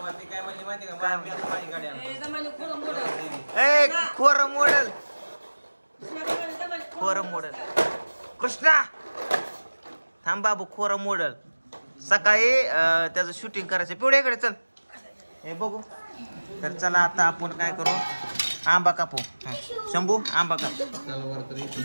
खोर मोडल. कृष्णा थांब बाबू, खोर मोडल. सकाळी त्याचं शूटिंग करायचं. पिवड्याकडे चल. हे बघू. तर चला आता आपण काय करू, आंबा कापू. शंभू आंबा काप.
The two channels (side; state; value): both; inverted; correlation -1.00